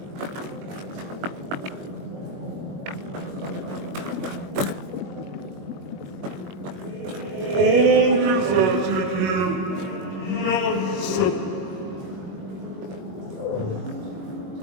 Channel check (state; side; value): late; left; 21 ms